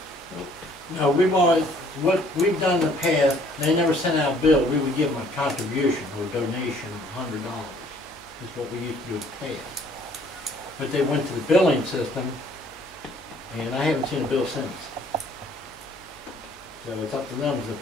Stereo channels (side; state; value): left; noise; hum, 29 dB below the sound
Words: no, we've always, what we've done in the past, they never sent out a bill. We would give them a contribution or donation of $100, is what we used to do in the past. But they went to the billing system, and I haven't seen a bill since. So it's up to them to